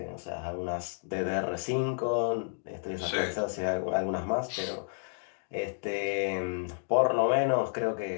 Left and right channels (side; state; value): right; silent; digital silence